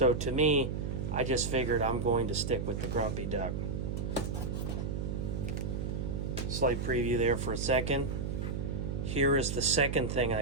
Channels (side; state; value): right; noise; hum, 2 dB below the sound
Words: to me, I just figured I'm going to stick with the Grumpy Duck. Slight preview there for a second. Here is the second thing